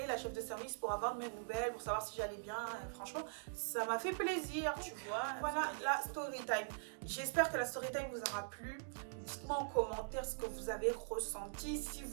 la chef de service, pour avoir de mes nouvelles, pour savoir si j'allais bien. Et franchement, ça m'a fait plaisir, tu vois. Voilà la story time. J'espère que la story time vous aura plu. Dites-moi en commentaire ce que vous avez ressenti. Si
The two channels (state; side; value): silent; left; digital silence